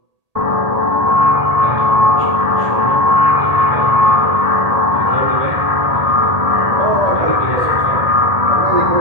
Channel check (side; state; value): left; late; 1.8 ms